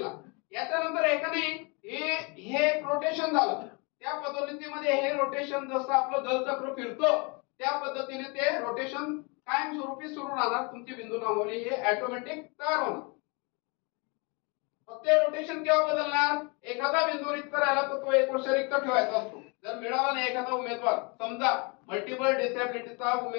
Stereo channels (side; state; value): right; quieter; 31.4 dB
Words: याच्यानंतर एकाने हे रोटेशन झालं, त्या पद्धतीमध्ये हे रोटेशन जसं आपलं जलचक्र फिरतो त्या पद्धतीने ते रोटेशन कायमस्वरूपी सुरू राहणार. तुमची बिंदू नामावली हे ऑटोमॅटिक तयार होणार. फक्त रोटेशन केव्हा बदलणार, एखादा बिंदू रिक्त राहिला तर तो 1 वर्ष रिक्त ठेवायचा असतो. जर मिळाला नाही एखादा उमेदवार, समजा मल्टिपल डिसेबिलिटीचा